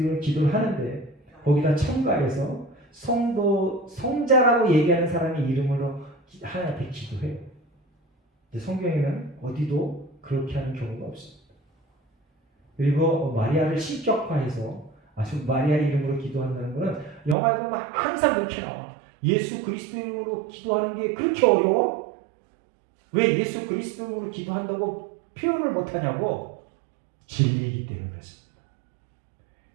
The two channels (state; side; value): drops out; left; at 17.4 s